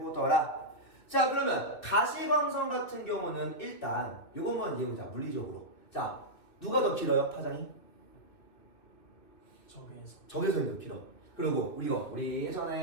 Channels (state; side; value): late; right; 2.7 ms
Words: 자, 그러면 가시광선 같은 경우는 일단 요것만 이해해보자. 물리적으로. 자, 누가 더 길어요? 파장이? 적외선이 더 길어. 그리고 우리